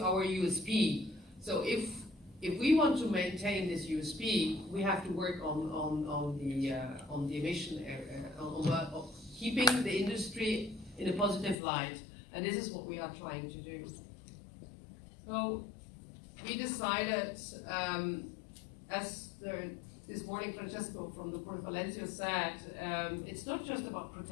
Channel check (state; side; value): drops out; right; at 11.6 s